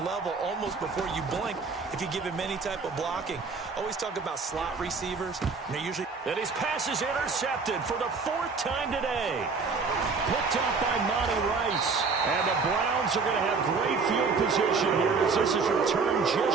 level almost before you blink if you give him any type of blocking. Always talk about slot receivers. And they're usually... And his pass is intercepted for the 4th time today. Picked up by Monty Rice. And the Browns are going to have great field position here as this is returned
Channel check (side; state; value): left; quieter; 4.7 dB